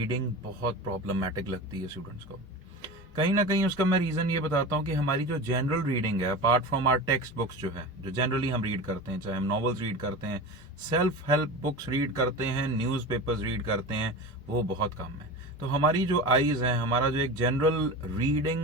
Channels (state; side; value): normal; both; correlation 0.29